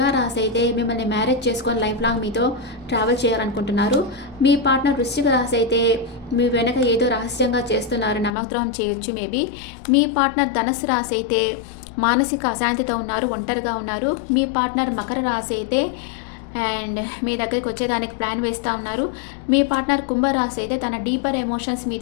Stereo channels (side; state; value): right; drops out; at 8.3 s